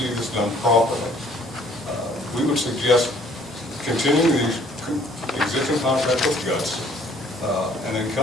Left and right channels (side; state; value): both; normal; correlation 0.59